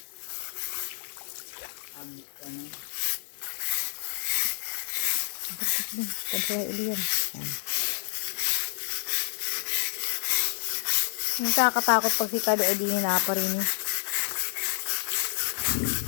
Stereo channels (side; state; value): right; silent; digital silence